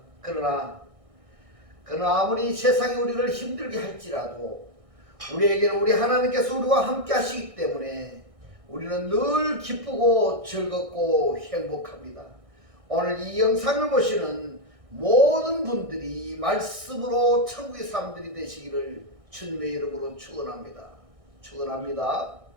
그러나 아무리 세상이 우리를 힘들게 할지라도 우리에게는 우리 하나님께서 우리와 함께 하시기 때문에 우리는 늘 기쁘고 즐겁고 행복합니다. 오늘 이 영상을 보시는 모든 분들이 말씀으로 천국의 사람들이 되시기를 주님의 이름으로 축원합니다.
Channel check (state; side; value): late; left; 1.6 ms